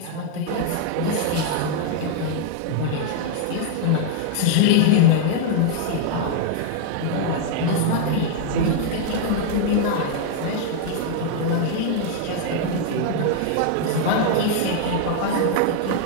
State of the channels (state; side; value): different; both; correlation 0.00